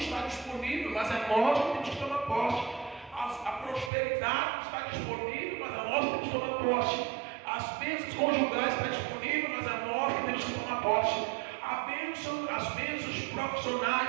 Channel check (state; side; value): drops out; left; at 3.9 s